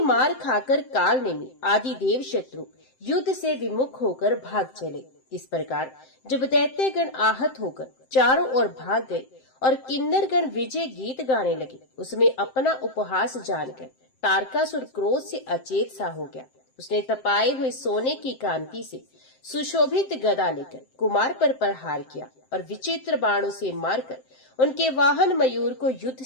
मार खाकर काल नेमी आदि देव शत्रु युद्ध से विमुख होकर भाग चले। इस प्रकार जब दैत्यगण आहत होकर चारों ओर भाग गए और किन्नरगण विजय गीत गाने लगे, उसमें अपना उपहास जानकर तारकासुर क्रोध से अचेत सा हो गया। उसने तपाए हुए सोने की कांति से सुशोभित गदा लेकर कुमार पर प्रहार किया और विचित्र बाणों से मारकर उनके वाहन मयूर को युद्ध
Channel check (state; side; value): late; right; 7.7 ms